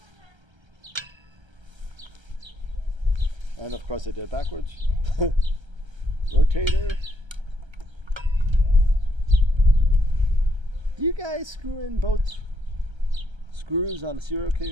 And of course I did it backwards. Rotator. Do you guys screw in both screws on a serial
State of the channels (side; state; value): left; late; 1.3 ms